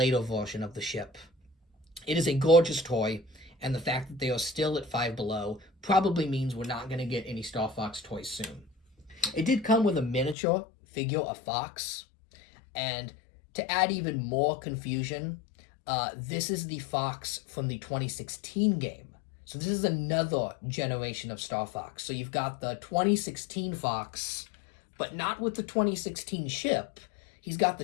version of the ship. It is a gorgeous toy, and the fact that they are still at Five Below probably means we're not going to get any Star Fox toys soon. It did come with a miniature figure of Fox, and to add even more confusion, this is the Fox from the 2016 game. So this is another generation of Star Fox. So you've got the 2016 Fox, but not with the 2016 ship. He's got the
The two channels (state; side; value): drops out; right; at 10.4 s